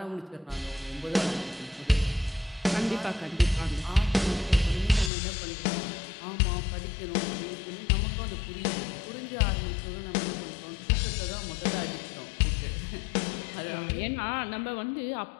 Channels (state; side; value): drops out; right; at 5.1 s